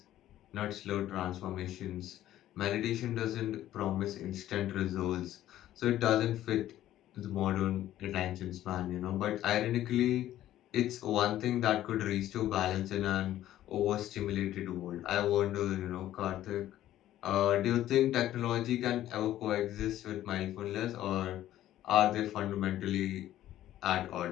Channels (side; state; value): right; quieter; 13.2 dB